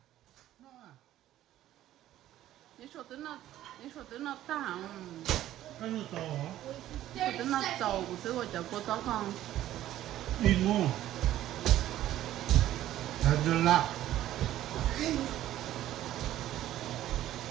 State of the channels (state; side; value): quieter; left; 13.3 dB